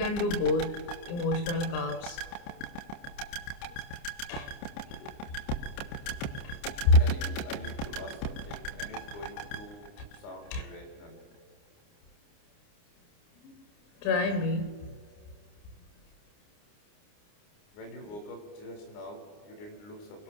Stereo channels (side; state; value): right; late; 29 ms